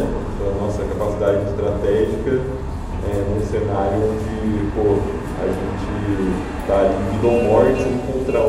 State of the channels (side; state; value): both; identical; correlation 1.00